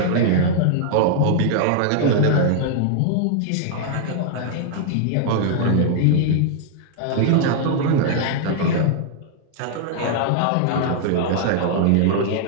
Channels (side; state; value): both; different; correlation -0.01